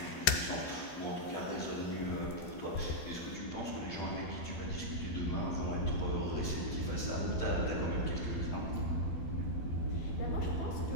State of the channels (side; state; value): right; late; 12 ms